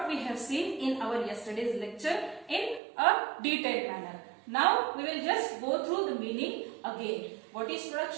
we have seen in our yesterday's lecture in a detailed manner. Now we will just go through the meaning again. What is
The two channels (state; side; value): drops out; left; at 2.8 s